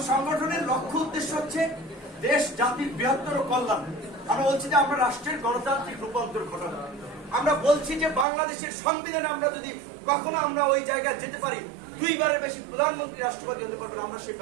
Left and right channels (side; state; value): left; drops out; at 8.2 s